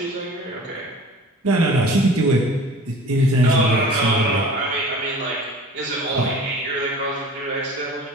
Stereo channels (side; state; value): both; normal; correlation 0.43